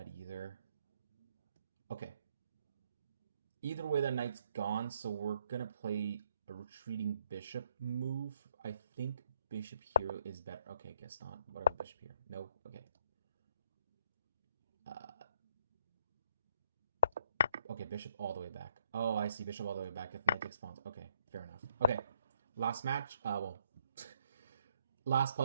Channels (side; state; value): both; inverted; correlation -0.71